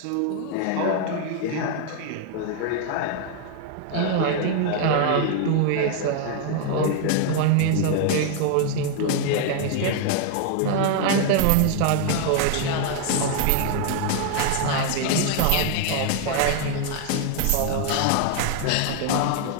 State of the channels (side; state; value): both; different; correlation 0.00